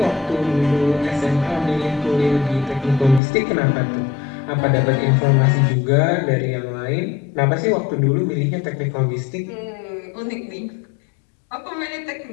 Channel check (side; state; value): right; drops out; at 3.2 s